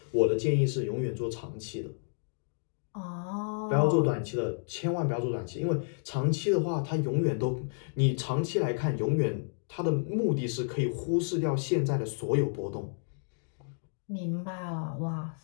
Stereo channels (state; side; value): silent; right; digital silence